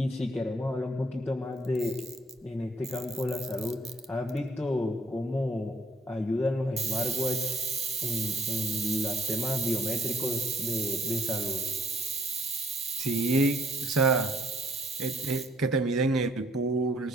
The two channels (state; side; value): normal; both; correlation 0.63